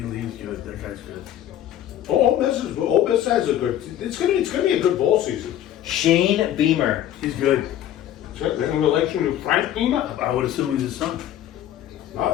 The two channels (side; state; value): right; quieter; 11.6 dB